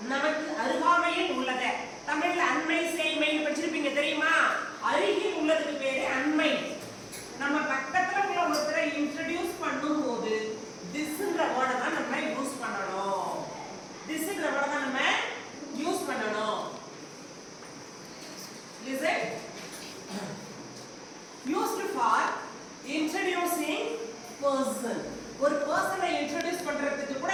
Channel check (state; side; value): identical; both; correlation 1.00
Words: நமக்கு அருகாமையில் உள்ளது. தமிழ்ல அண்மை சேய்மை படிச்சிருப்பீங்க தெரியுமா? அருகில் உள்ளதுக்கு பேரு அண்மை. நம்ம பக்கத்துல உள்ள ஒருத்தரை இன்ட்ரோ듀ce பண்ணும்போது thisன்ற வேர்டை தான் நம்ம யூஸ் பண்ணணும். thisன்ற வேர்டை தான் நம்ம யூஸ் பண்ணணும். Listen. Used for introducing person. ஒரு பர்சனை இன்ட்ரோ듀ce பண்றதுக்கு கூட